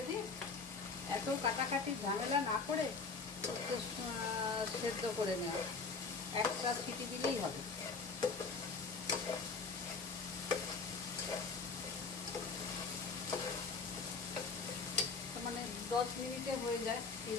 দিয়ে এত কাটাকাটি ঝামেলা না করে সেদ্ধ করে নেওয়া, একটা সিটি দিলেই হবে। মানে 10 মিনিটে হয়ে যায় এই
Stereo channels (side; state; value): right; quieter; 4.6 dB